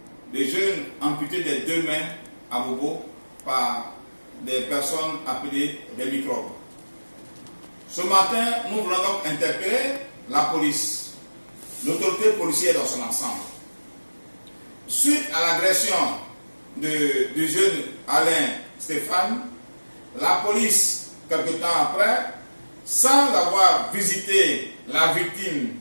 le jeune amputé des deux mains à Bobo par des personnes appelées des microbes. Ce matin, nous voulons donc interpeller la police, l'autorité policière dans son ensemble. Suite à l'agression du jeune Alain Stéphane, la police, quelque temps après, sans avoir visité la victime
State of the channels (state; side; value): inverted; both; correlation -1.00